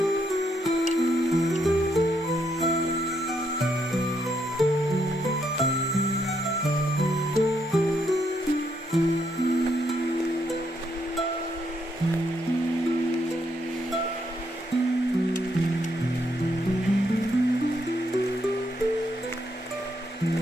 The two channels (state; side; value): normal; both; correlation 0.76